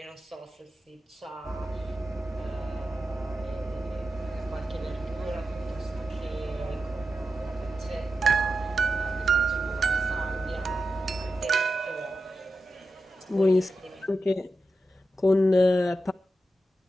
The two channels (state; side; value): normal; both; correlation 0.90